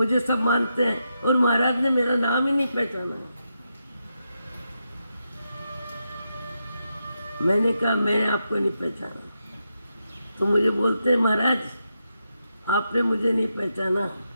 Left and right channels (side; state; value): both; inverted; correlation -0.85